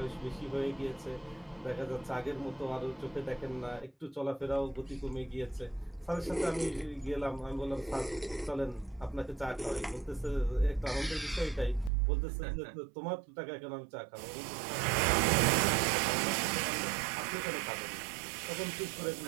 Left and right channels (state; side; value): drops out; left; at 11.9 s